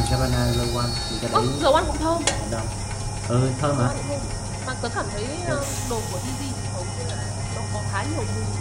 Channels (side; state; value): both; identical; correlation 1.00